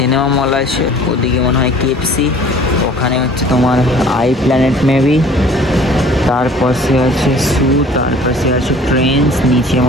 মল আছে, ওদিকে মনে হয় কেএফসি, ওখানে হচ্ছে তোমার আই প্ল্যানেট মেবি, তার পাশে আছে সু, তার পাশে আছে ট্রেন্ডস, নিচে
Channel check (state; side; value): normal; both; correlation 0.50